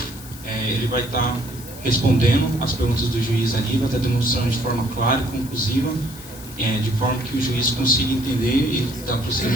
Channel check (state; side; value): noise; left; hiss, 17 dB below the sound